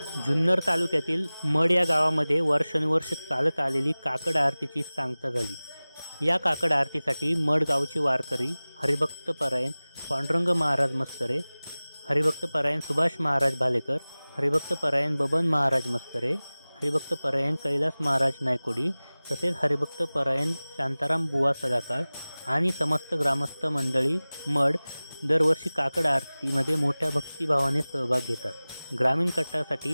जुन्नर तालुक्यातील मड या गावामध्ये वर्षानुवर्ष चालत आलेली काकड आरतीची सांगता झाली। या काकड आरतीसाठी मड गावचे वारकरी हरिभक्त परायण पांडुरंग महाराज मस्करे, हरिभक्त परायण सुभाष महाराज भालेकर, हरिभक्त परायण बबन महाराज मस्करे, हरिभक्त परायण कैलास महाराज नायकोडी तसेच हरिभक्त परायण शांताराम बुवा सदाकाळ आणि समस्त ग्रामस्थ मंडळी मड दरवर्षी काकड आरतीमध्ये मोठ्या भक्तिभावाने सहभाग घेतात। ग्रामीण कट्टासाठी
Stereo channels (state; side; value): inverted; both; correlation -0.99